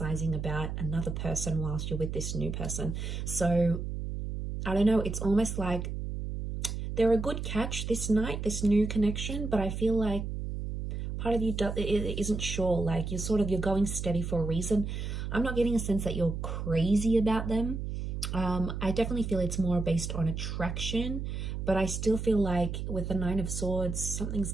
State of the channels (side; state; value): right; noise; hum, 4 dB below the sound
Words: about another person whilst you're with this new person. So I don't know, it's almost like they're a good catch this night, this new connection, but I feel like part of you isn't sure, like you're going steady for a reason. I'm not getting a sense that you're crazy about them. I definitely feel it's more based on attraction, but I still feel like with the Nine of Swords, something's